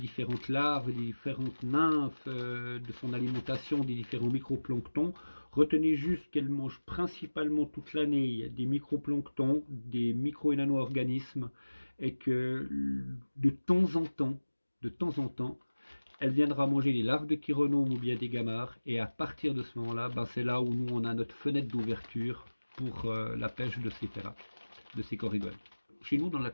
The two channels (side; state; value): both; inverted; correlation -1.00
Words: larves, des différentes nymphes, de son alimentation, des différents microplanctons. Retenez juste qu'elle mange principalement toute l'année des microplanctons, des micro- et nano-organismes, et que de temps en temps, elle viendra manger les larves de chironomes ou bien des gamarres, et à partir de ce moment-là, ben c'est là où nous on a notre fenêtre d'ouverture pour la pêche de ces ferrats, de ces corégones. Chez nous, dans le